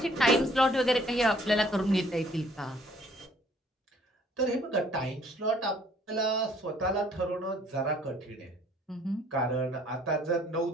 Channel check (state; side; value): normal; both; correlation 0.60